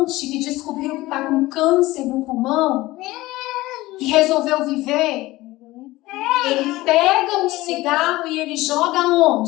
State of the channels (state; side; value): quieter; right; 18.6 dB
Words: que descobriu que está com câncer no pulmão e resolveu viver. Ele pega um cigarro e ele joga